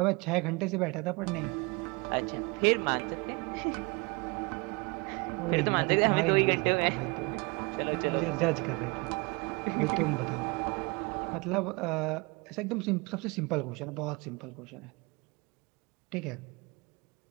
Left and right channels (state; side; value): quieter; left; 28.1 dB